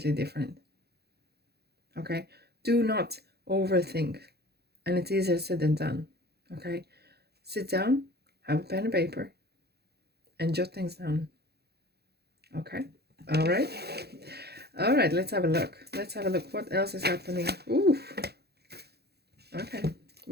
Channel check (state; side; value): late; left; 0.47 ms